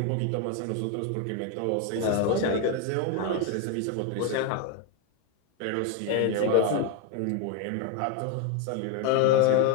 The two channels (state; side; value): different; both; correlation 0.01